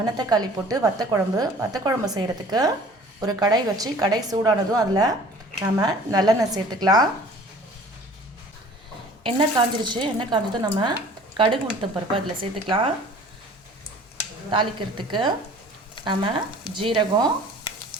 போட்டு வத்த குழம்பு செய்கிறதுக்கு ஒரு கடாய் வச்சு கடாய் சூடானதும் அதில் நம்ம நல்லெண்ணெய் சேர்த்துக்கலாம். எண்ணெய் காஞ்சதும் நம்ம கடுகு உளுத்தம் பருப்பு அதில் சேர்த்துக்கலாம். தாளிக்கிறதுக்கு நம்ம ஜீரகம்,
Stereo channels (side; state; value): both; normal; correlation 0.48